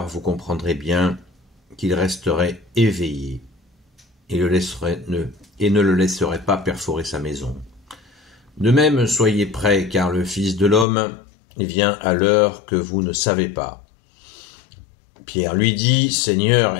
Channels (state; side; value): drops out; right; at 10.9 s